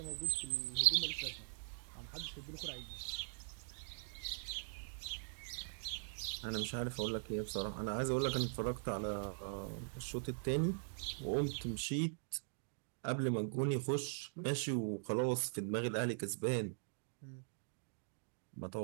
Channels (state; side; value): silent; left; digital silence